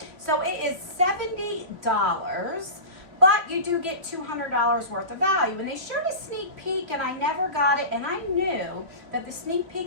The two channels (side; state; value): left; late; 2.8 ms